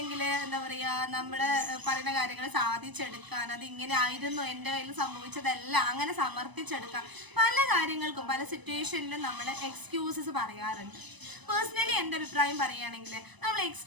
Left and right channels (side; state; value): left; late; 1.0 ms